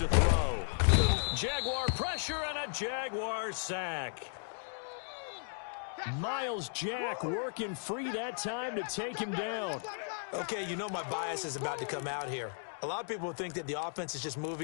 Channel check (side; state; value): right; silent; digital silence